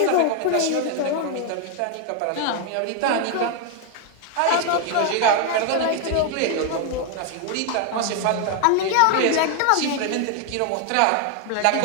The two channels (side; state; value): both; different; correlation 0.00